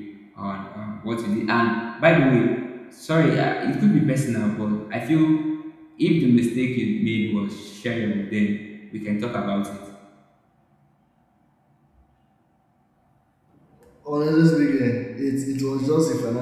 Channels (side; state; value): both; identical; correlation 1.00